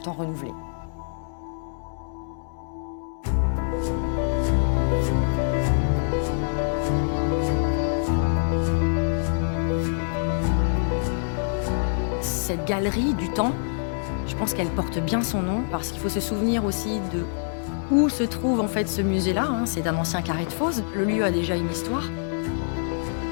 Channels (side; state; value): right; silent; digital silence